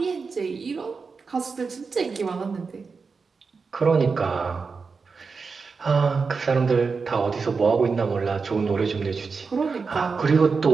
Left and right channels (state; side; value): quieter; left; 4.9 dB